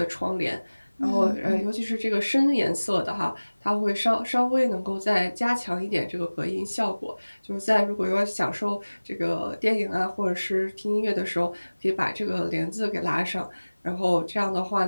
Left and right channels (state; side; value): inverted; both; correlation -1.00